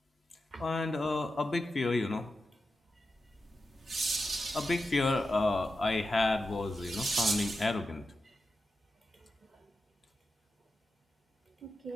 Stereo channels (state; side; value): normal; both; correlation 0.91